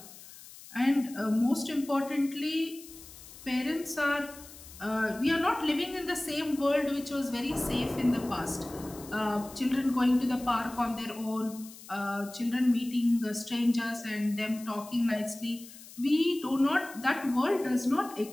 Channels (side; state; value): left; noise; hiss, 18 dB below the sound